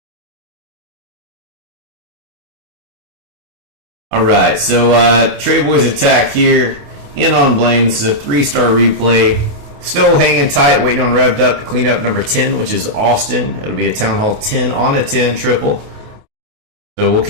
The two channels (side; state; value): left; late; 28 ms